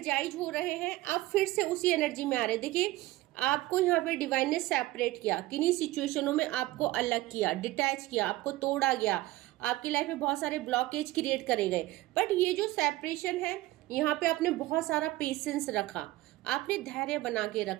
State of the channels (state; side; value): quieter; left; 17.7 dB